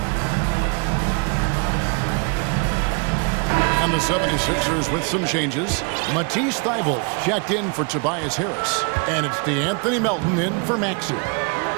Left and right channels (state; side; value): quieter; left; 34.4 dB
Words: And the 76ers with some changes. Matisse Thybulle checked in for Tobias Harris. And it's DeAnthony Melton in for Maxey.